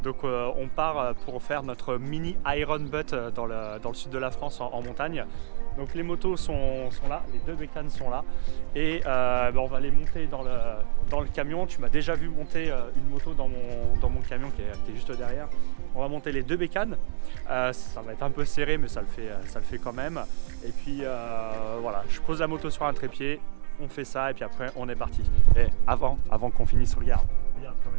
Donc on part pour faire notre mini Iron Butt dans le sud de la France en montagne. Donc les motos sont là, les deux bécanes sont là. Et on va les monter dans le camion. Tu m'as déjà vu monter une moto dans mon camion qui est juste derrière. On va monter les deux bécanes. Ça va être un peu serré mais ça le fait quand même. Et puis voilà, je pose la moto sur un trépied. On fait ça et puis après on est parti. Et avant qu'on finisse, regarde quand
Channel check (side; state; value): left; silent; digital silence